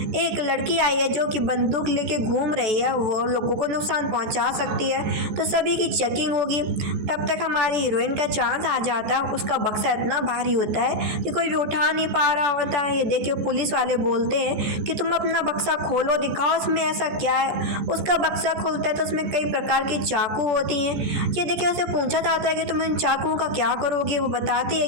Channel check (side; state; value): left; late; 14 ms